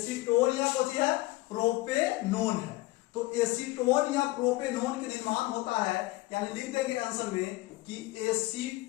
या कोची है प्रोपेनोन है। तो एसीटोन या प्रोपेनोन के निर्माण होता है, यानी लिख देंगे आंसर में कि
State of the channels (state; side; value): quieter; right; 19.8 dB